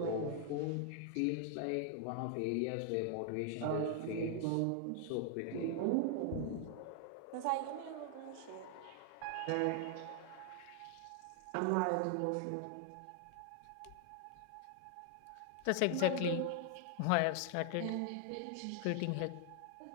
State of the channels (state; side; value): different; both; correlation 0.00